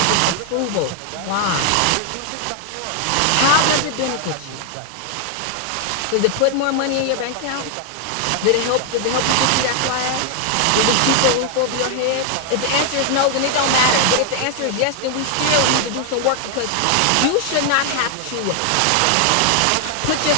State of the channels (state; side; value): different; both; correlation 0.00